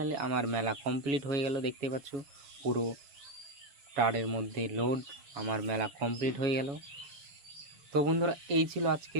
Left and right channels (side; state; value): left; late; 7.2 ms